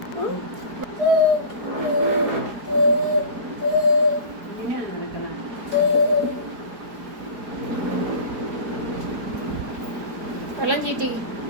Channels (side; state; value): left; late; 4.5 ms